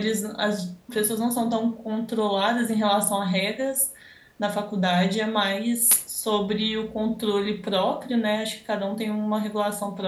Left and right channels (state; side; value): identical; both; correlation 1.00